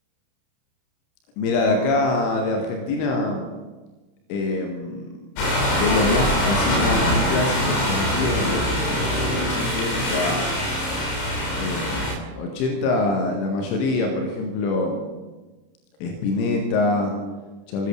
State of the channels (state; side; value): late; right; 30 ms